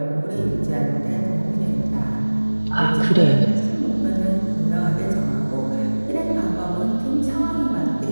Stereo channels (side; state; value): both; inverted; correlation -1.00